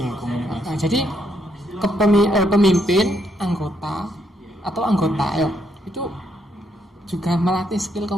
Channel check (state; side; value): normal; both; correlation 0.75